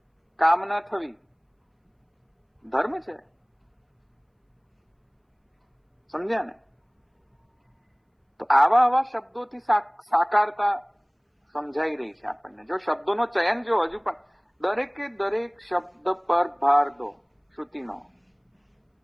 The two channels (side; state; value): both; identical; correlation 1.00